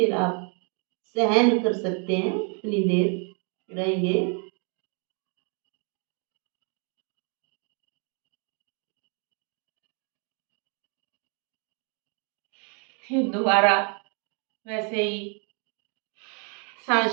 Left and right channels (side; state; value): left; quieter; 38.4 dB